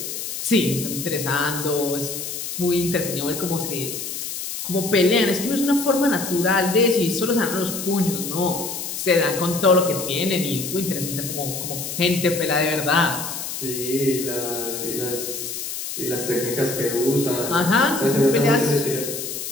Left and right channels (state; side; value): noise; left; hiss, 6 dB below the sound